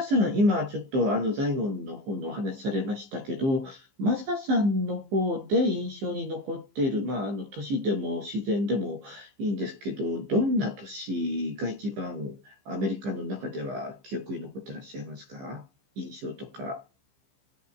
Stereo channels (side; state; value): left; late; 15 ms